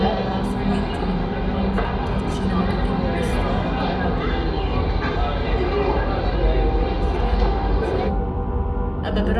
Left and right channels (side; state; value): both; identical; correlation 1.00